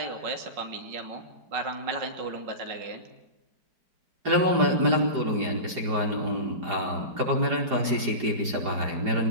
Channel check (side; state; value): left; late; 4.9 ms